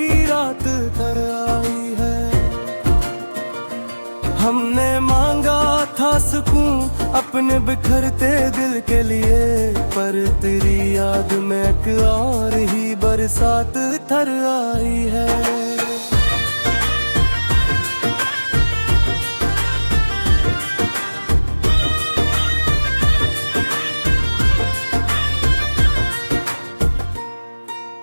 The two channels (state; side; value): inverted; both; correlation -1.00